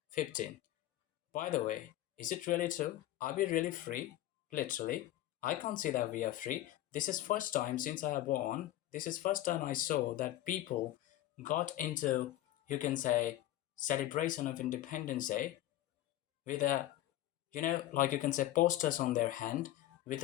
15. By the way, is it really true? Are we really free? Literally, I can't say that we are free. This is first time since I have born. This is first time I saw that people got into, you can say, celebration of Independence Day with a, like you can say, posters on their hand, with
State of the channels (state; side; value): quieter; right; 14.3 dB